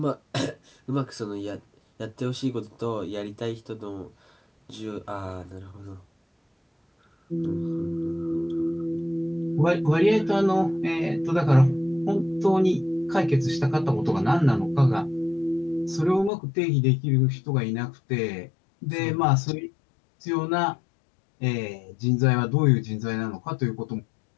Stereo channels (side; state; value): right; drops out; at 16.3 s